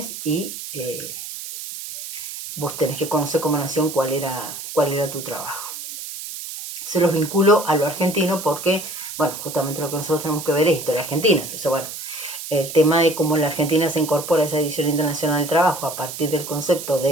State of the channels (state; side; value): noise; right; hiss, 9 dB below the sound